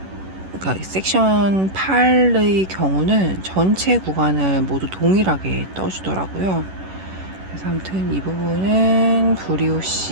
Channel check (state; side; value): late; left; 11 ms